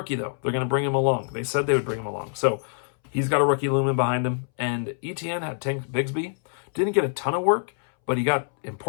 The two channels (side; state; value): right; silent; 62 dB below the other